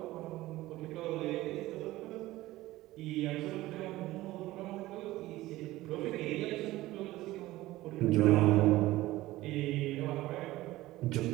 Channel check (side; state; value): left; quieter; 17.2 dB